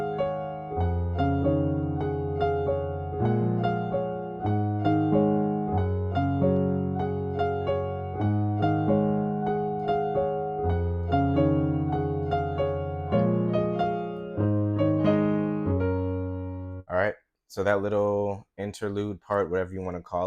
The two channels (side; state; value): both; identical; correlation 1.00